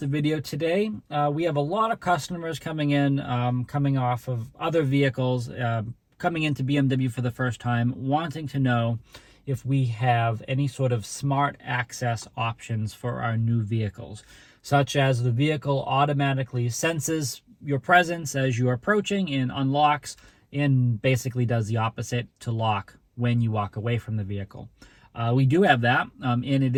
video today. We have a lot of customers coming in, coming off of other vehicles, coming into BMW for the first time, wanting to know if we have any sort of smart access options for our new vehicles, such as the vehicle automatically senses your presence as you are approaching and unlocks, and basically does the opposite to lock when you walk away from the vehicle. We do have that, and it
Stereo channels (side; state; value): both; identical; correlation 1.00